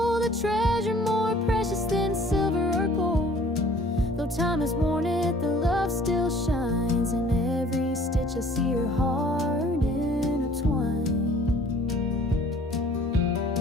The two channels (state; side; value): normal; both; correlation 0.53